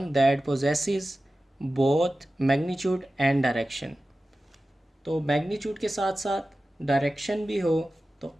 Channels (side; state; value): both; normal; correlation 0.95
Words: that possesses both magnitude and direction. तो मैग्नीट्यूड के साथ साथ डायरेक्शन भी हो तो